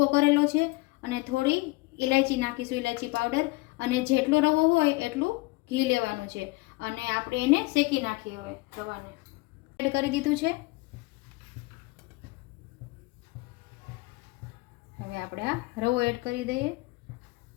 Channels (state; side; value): quieter; right; 22.9 dB